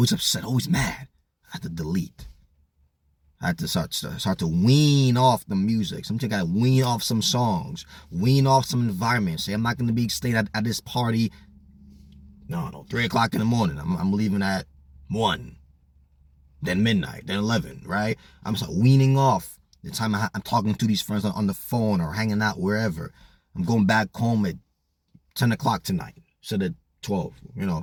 upset, always mad. I have to delete. I have to start to wean off the music. Sometimes I gotta wean off some songs, wean off some environments. Say I'm not gonna be staying at this party. No, 3 o'clock in the morning. I'm leaving at 1. Then midnight, then 11, right? I'm just weaning off the time I'm talking to these friends on the phone or hanging out wherever. I'm going back home at 10 o'clock tonight instead of 12, you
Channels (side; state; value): both; identical; correlation 1.00